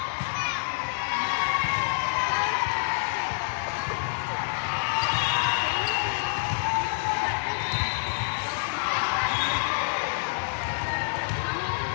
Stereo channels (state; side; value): silent; right; digital silence